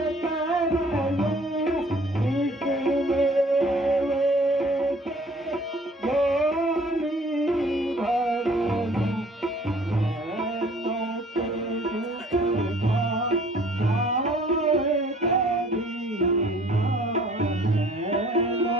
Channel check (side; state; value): both; normal; correlation 0.54